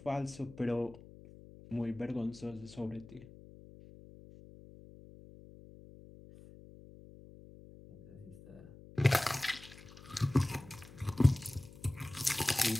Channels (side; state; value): left; noise; hum, 19 dB below the sound